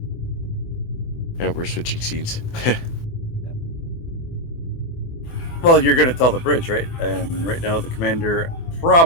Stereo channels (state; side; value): late; right; 24 ms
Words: Yeah, we're switching scenes. Well, you're going to tell the bridge, right? And right now, the commander